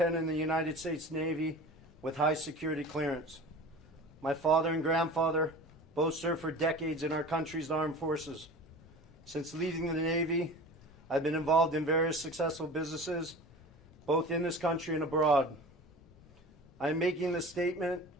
in the United States Navy with high security clearance. My father and grandfather both served for decades in our country's armed forces. Since leaving the Navy, I've been involved in various successful businesses, both in this country and abroad. I am making this statement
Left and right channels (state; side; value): normal; both; correlation 0.37